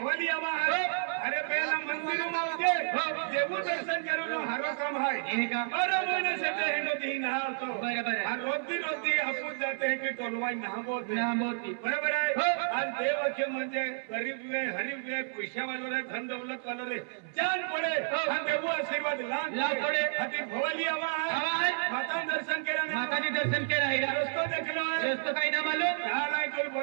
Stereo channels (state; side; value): silent; left; 57 dB below the other